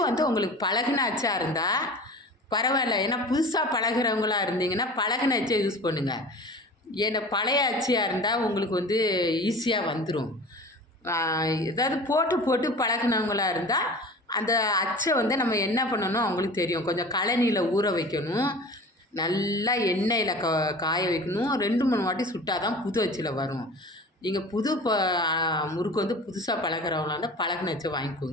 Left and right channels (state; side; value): normal; both; correlation 0.39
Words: உங்களுக்கு பழகின அச்சாக இருந்தால் பரவாயில்ல. ஏன்னா புதுசாக பழகிறவங்களா இருந்தீங்கன்னா பழகின அச்சை யூஸ் பண்ணுங்கள். ஏன்னா பழைய அச்சியாக இருந்தால் உங்களுக்கு ஈஸியாக வந்துடும். ஏதாவது போட்டு பழகினவங்களாக இருந்தால் அந்த அச்சை நம்ம என்ன பண்ணணும் அவங்களுக்கு தெரியும். கொஞ்சம் கழனியில் ஊற வைக்கணும், நல்லா எண்ணெயில் காய வைக்கணும். 2-3 வாட்டி சுட்டால் தான் புது அச்சில் வரும். நீங்கள் புது முறுக்கு புதுசாக பழகிறவங்களா இருந்தால் பழகின அச்சை